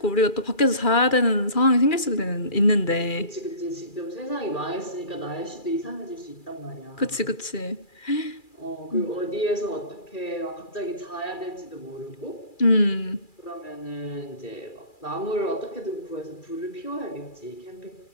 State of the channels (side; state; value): right; late; 2.4 ms